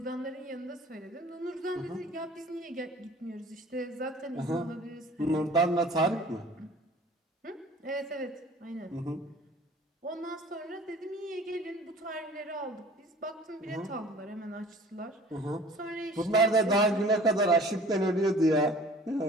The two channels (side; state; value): both; normal; correlation 0.47